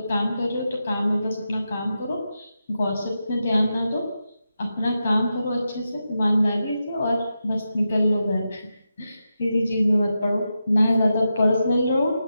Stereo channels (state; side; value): inverted; both; correlation -0.88